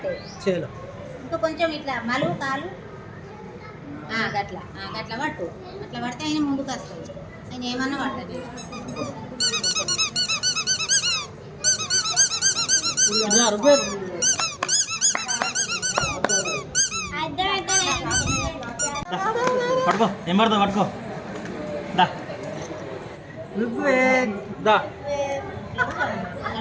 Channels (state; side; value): identical; both; correlation 1.00